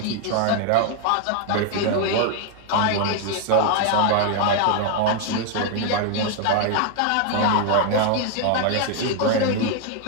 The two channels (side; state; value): both; different; correlation 0.01